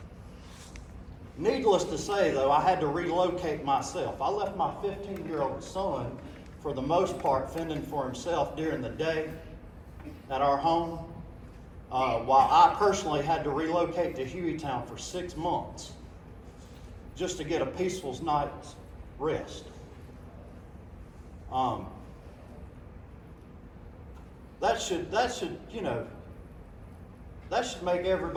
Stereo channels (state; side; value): identical; both; correlation 1.00